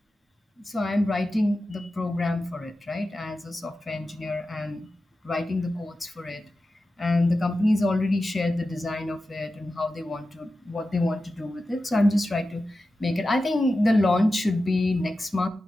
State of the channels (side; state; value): both; normal; correlation 0.93